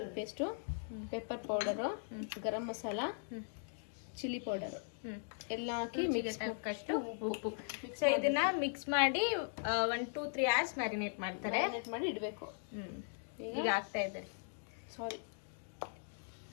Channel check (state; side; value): silent; right; digital silence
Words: ಪೇಸ್ಟು, ಪೆಪ್ಪರ್ ಪೌಡರು, ಗರಂ ಮಸಾಲ, ಚಿಲ್ಲಿ ಪೌಡರು ಎಲ್ಲ ಹಾಕಿ ಮಿಕ್ಸ್ ಹಾಕಷ್ಟು ಉಪ್ಪು. ಸೊ ಇದನ್ನ ಮಿಕ್ಸ್ ಮಾಡಿ 1-2-3 hours ಮ್ಯಾರಿನೇಟ್ ಮಾಡ್ತಾರೆ. ಮಾಡಿ ಇಡಬೇಕು. ಈಗ ಆಗ್ತಾ ಇದ್ದಾರೆ. ಸಾರಿ,